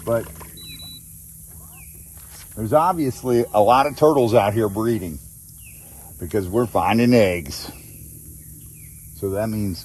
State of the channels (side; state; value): both; identical; correlation 1.00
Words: but there's obviously a lot of turtles out here breeding because we're finding eggs. So that